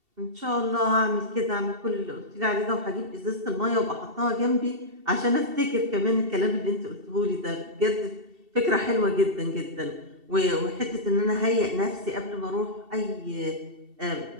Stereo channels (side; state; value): left; late; 2.7 ms